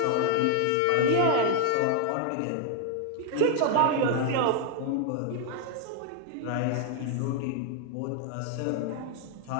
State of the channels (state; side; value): different; both; correlation 0.00